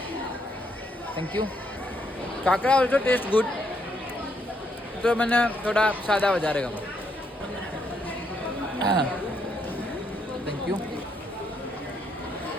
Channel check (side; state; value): both; normal; correlation 0.75